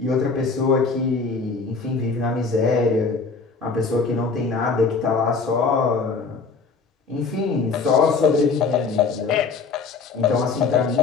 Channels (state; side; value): quieter; right; 4.6 dB